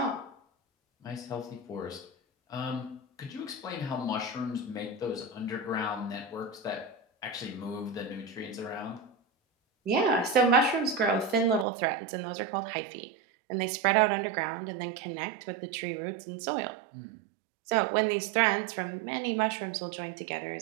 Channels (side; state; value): left; drops out; at 11.7 s